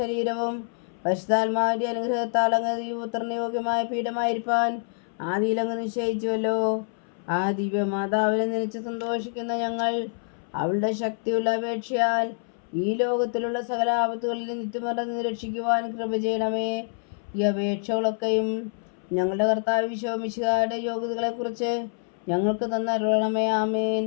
പരിശുദ്ധാത്മാവിൻ്റെ അനുഗ്രഹത്താൽ അങ്ങ് പുത്രന് യോഗ്യമായ പീഠമായിരിക്കാൻ ആദിയിലങ്ങ് നിശ്ചയിച്ചുവല്ലോ. ആ ദിവ്യമാതാവിനെ നനച്ച് സന്തോഷിക്കുന്ന ഞങ്ങൾ അവളുടെ ശക്തിയുള്ള അപേക്ഷയാൽ ഈ ലോകത്തിലുള്ള സകല ആപത്തുകളിൽ നിത്യമറന്ന് രക്ഷിക്കുവാൻ കൃപ ചെയ്യണമേ. ഈ അപേക്ഷകളൊക്കെയും ഞങ്ങളുടെ കർത്താവ് ഈശോ മിശിഹായുടെ യോഗ്യതകളെക്കുറിച്ച് ഞങ്ങൾക്ക് തന്നരുളണമേ. ആമേൻ.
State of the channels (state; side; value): silent; right; 61 dB below the other